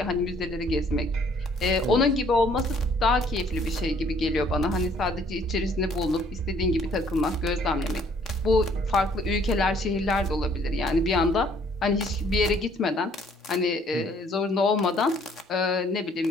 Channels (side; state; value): both; normal; correlation 0.61